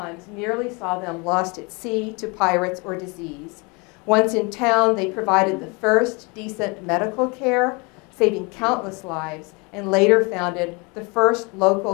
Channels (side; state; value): right; quieter; 29.6 dB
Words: nearly saw them lost at sea to pirates or disease. Once in town, they provided the first decent medical care, saving countless lives, and later founded the first